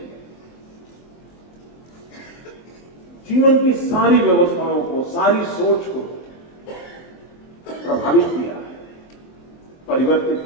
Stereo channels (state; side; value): late; right; 23 ms